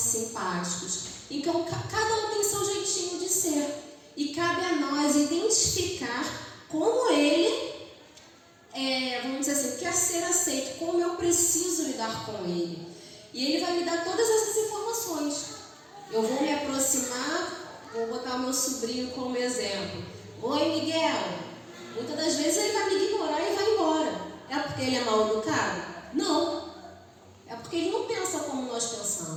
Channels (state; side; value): identical; both; correlation 1.00